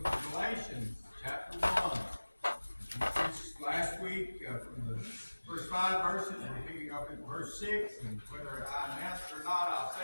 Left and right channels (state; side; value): inverted; both; correlation -1.00